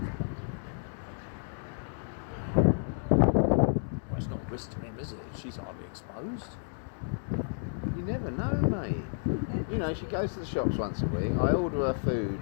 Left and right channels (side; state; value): right; silent; digital silence